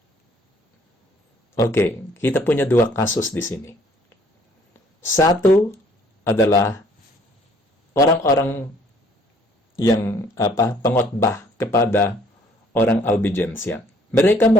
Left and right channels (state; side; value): normal; both; correlation 0.60